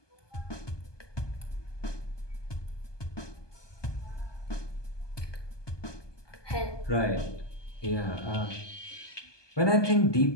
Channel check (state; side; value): late; right; 1.2 ms